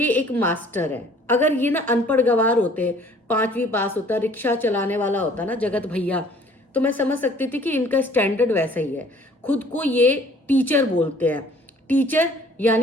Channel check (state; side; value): normal; both; correlation 0.55